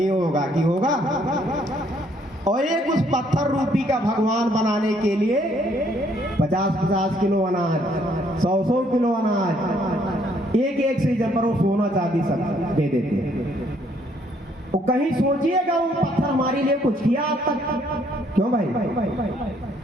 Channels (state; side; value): normal; both; correlation 0.67